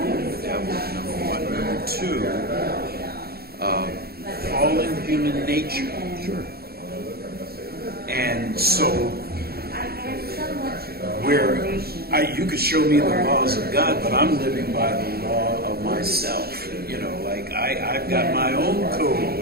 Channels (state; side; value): late; left; 0.45 ms